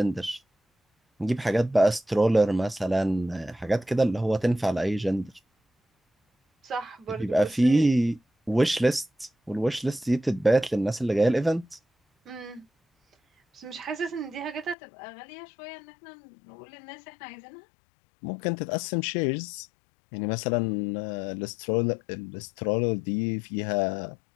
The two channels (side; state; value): right; drops out; at 14.8 s